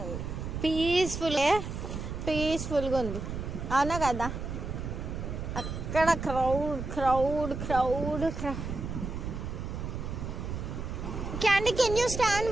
పీస్ఫుల్గా ఉంది, అవునా కదా? అక్కడ crowd. Candy, can you stand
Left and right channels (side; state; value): right; noise; rumble, 5 dB below the sound